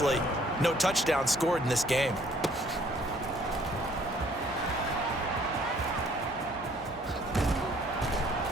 no touchdown scored in this game.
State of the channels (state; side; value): normal; both; correlation 0.60